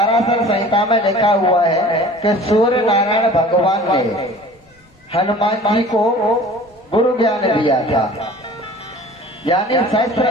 संहिता में लिखा हुआ है कि सूर्य नारायण भगवान ने हनुमान जी को गुरु ज्ञान दिया था, यानी शस्त्र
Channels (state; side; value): normal; both; correlation 0.45